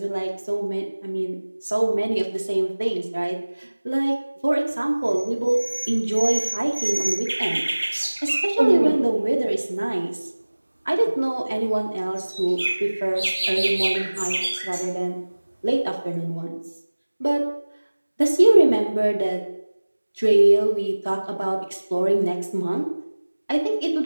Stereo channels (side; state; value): both; inverted; correlation -1.00